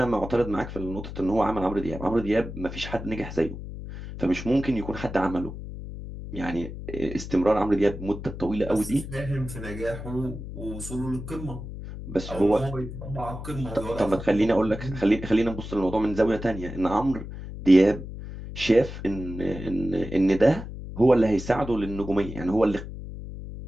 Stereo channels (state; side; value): noise; left; hum, 10 dB below the sound